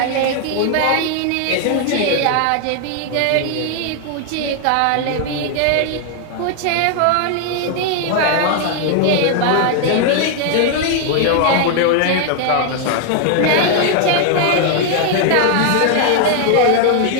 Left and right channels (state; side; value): different; both; correlation 0.00